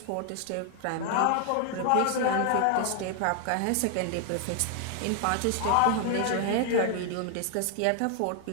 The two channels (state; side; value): different; both; correlation 0.00